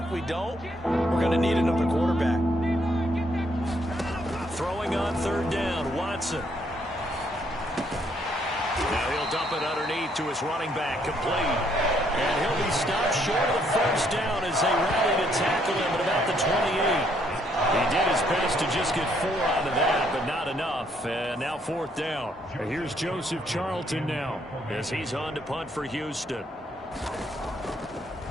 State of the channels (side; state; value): both; normal; correlation 0.70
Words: we don't, we're going to need another quarterback. Throwing on 3rd down, Watson. Now he'll dump it underneath to his running back, complete. And he'll be stopped short of the first down as they rally to tackle him at about the 28. He did his best to just get 4 out of that, but not enough. And now 4th down. And here's Joseph Charlton now, as he's on to punt for Houston.